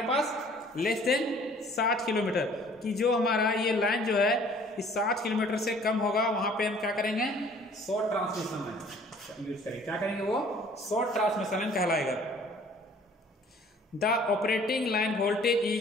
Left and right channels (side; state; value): both; normal; correlation 0.54